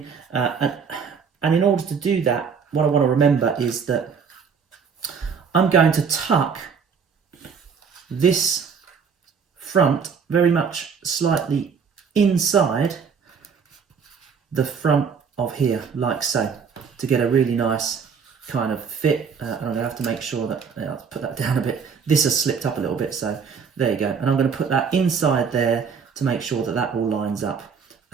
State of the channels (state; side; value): quieter; left; 6.2 dB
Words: and in order to do that, what I want to remember is that I'm going to tuck this front very much slightly inside the front of here, like so, to get a really nice kind of fit. And I'm going to have to make sure that, I'll put that down a bit. This has slipped up a little bit, so there you go. And I'm going to put that inside there to make sure that that all lines up.